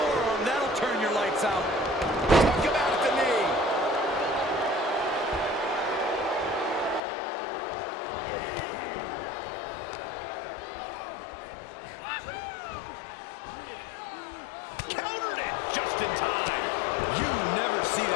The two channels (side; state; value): right; drops out; at 7.0 s